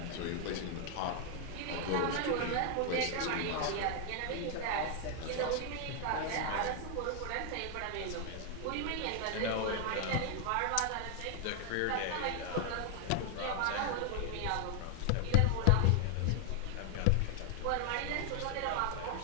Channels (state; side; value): different; both; correlation 0.00